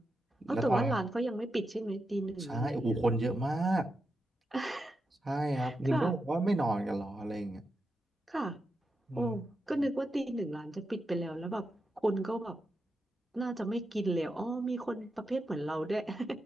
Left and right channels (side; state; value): both; normal; correlation 0.87